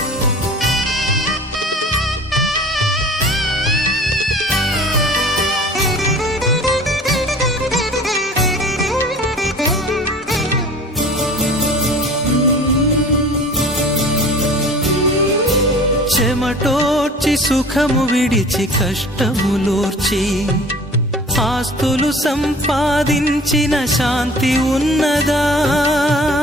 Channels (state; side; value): normal; both; correlation 0.44